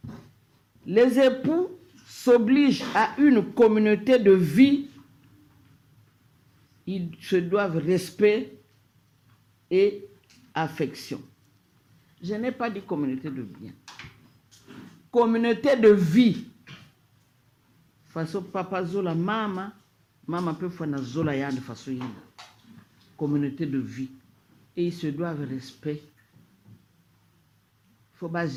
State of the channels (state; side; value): identical; both; correlation 1.00